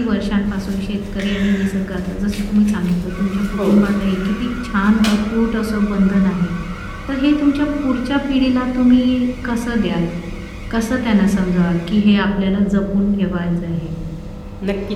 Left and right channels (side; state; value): both; identical; correlation 1.00